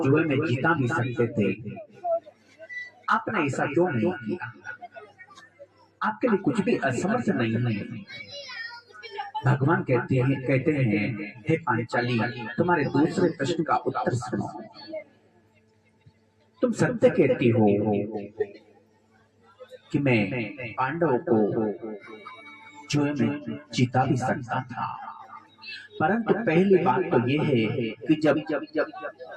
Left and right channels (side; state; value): both; identical; correlation 1.00